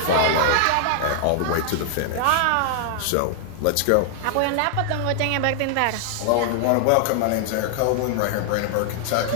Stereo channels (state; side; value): different; both; correlation 0.00